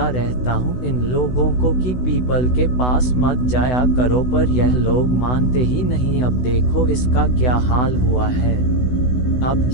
रहता हूँ इन लोगों को कि पीपल के पास मत जाया करो, पर यह लोग मानते ही नहीं। अब देखो इसका क्या हाल हुआ है। अब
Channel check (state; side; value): late; right; 16 ms